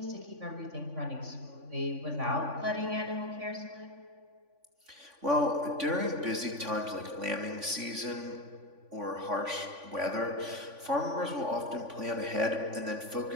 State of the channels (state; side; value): late; left; 3.5 ms